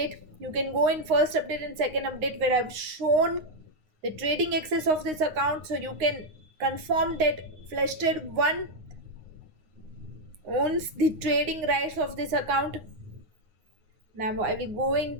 You can go in first update and second update where I've shown the trading access of this account, so you can confirm that Flash Trade 1 owns the trading rights of this account. Now I will go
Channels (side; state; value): left; late; 9.6 ms